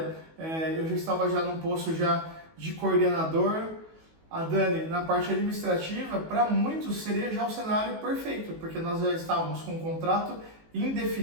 eu já estava já num posto já de coordenador, a Dani na parte administrativa, para muitos seria já o cenário perfeito, porque nós já estávamos com um contrato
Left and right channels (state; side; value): late; left; 19 ms